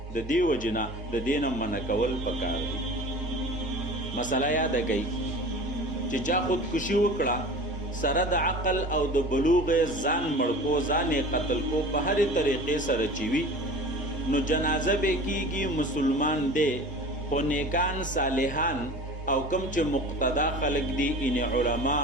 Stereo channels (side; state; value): both; normal; correlation 0.38